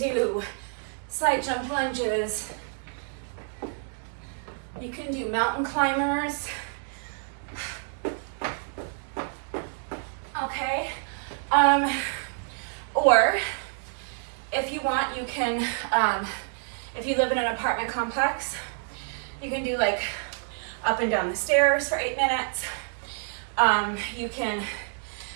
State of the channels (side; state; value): left; silent; 59 dB below the other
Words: side jump lunges. You can do mountain climbers. Okay. Or if you want, you can, if you live in an apartment complex, you can do like up and down the stairs for 8 minutes. You can